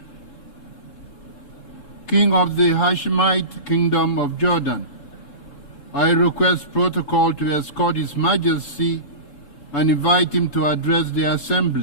King of the Hashemite Kingdom of Jordan. I request protocol to escort His Majesty and invite him to address the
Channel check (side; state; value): right; late; 3.7 ms